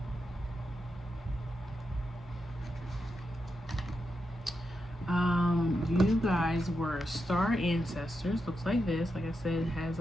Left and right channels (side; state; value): both; normal; correlation 0.86